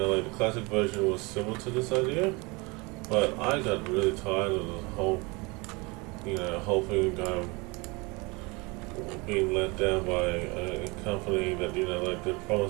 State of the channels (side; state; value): left; quieter; 26.9 dB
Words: the classic version was similar to this idea, but I got really tired of the whole hoping being let down by a company that they